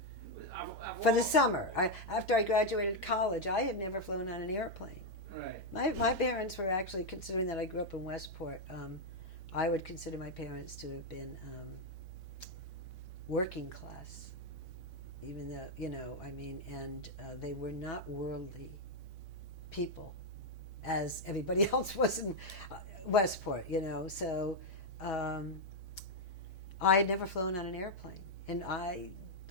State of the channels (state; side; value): normal; both; correlation 0.01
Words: For the summer. After I graduated college, I had never flown on an airplane. Right. My parents were actually, considering that I grew up in Westport, I would consider my parents to have been working class, even though, and they were not worldly people, as everybody else was in Westport, so I had never flown on an airplane, and I